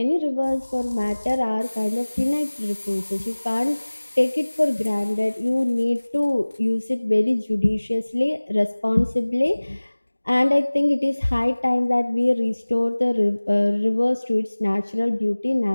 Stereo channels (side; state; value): both; inverted; correlation -1.00